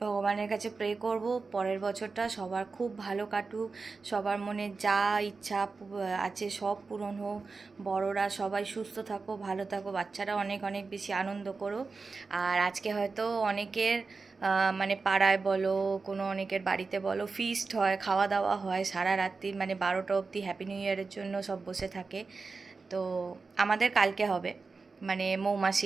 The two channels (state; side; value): quieter; left; 4.3 dB